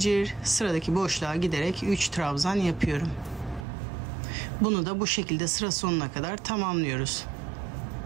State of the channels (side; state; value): left; drops out; at 3.7 s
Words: sıradaki boşluğa giderek 3 trabzan yapıyorum. Bunu da bu şekilde sıra sonuna kadar tamamlıyoruz.